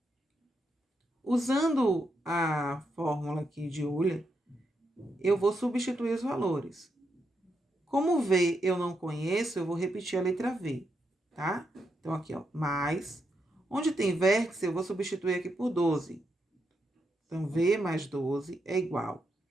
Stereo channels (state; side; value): normal; both; correlation 0.82